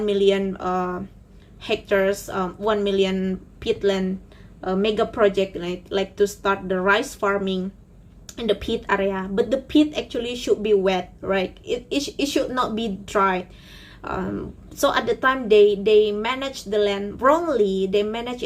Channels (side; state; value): both; identical; correlation 1.00